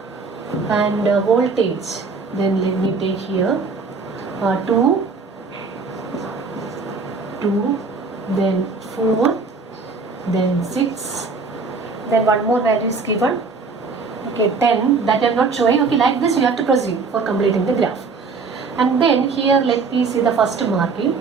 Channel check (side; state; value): left; quieter; 4.4 dB